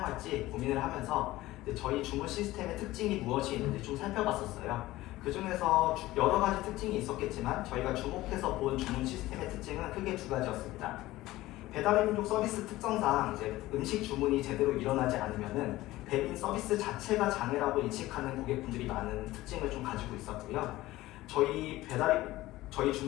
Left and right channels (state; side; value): quieter; right; 17.3 dB